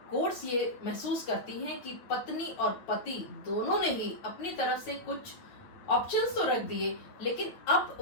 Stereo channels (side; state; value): right; late; 9.1 ms